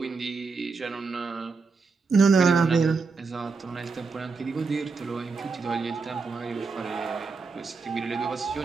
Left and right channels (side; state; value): left; quieter; 4.6 dB